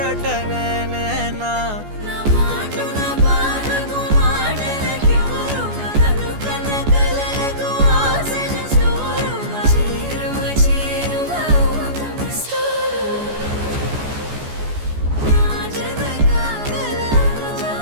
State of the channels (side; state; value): left; late; 14 ms